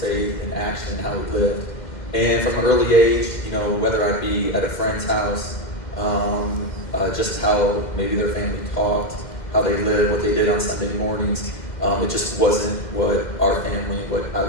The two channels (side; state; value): right; late; 2.1 ms